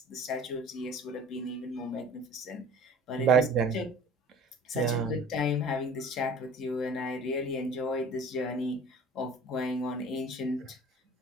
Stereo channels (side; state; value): both; normal; correlation 0.45